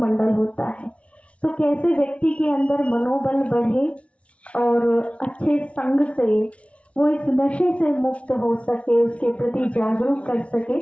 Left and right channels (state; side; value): late; right; 0.062 ms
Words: होता है। तो कैसे व्यक्ति के अंदर मनोबल बढ़े और अच्छे संग से वो इस नशे से मुक्त हो सके, उसके प्रति जागरूक कर सके,